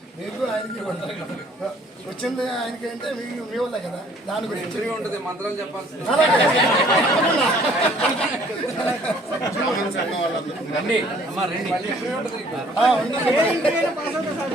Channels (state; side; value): normal; both; correlation 0.58